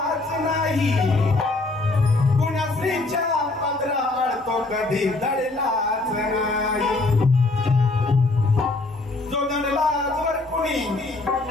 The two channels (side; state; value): right; quieter; 3.1 dB